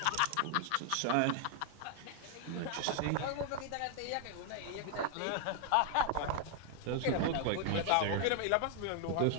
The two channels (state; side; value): different; both; correlation 0.00